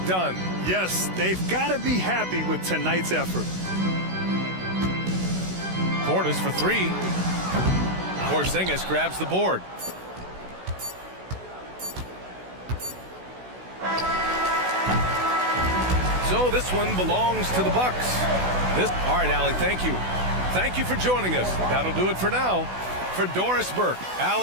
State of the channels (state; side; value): late; left; 16 ms